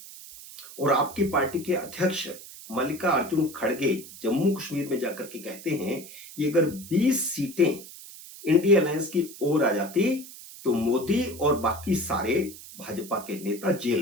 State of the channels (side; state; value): right; noise; hiss, 16 dB below the sound